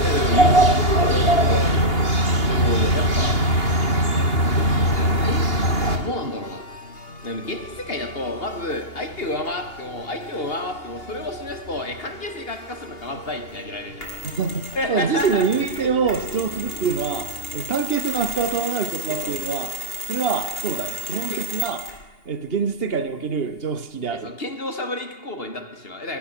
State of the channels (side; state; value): right; late; 2.8 ms